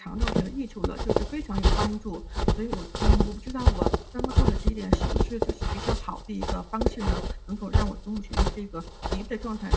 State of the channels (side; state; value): both; identical; correlation 1.00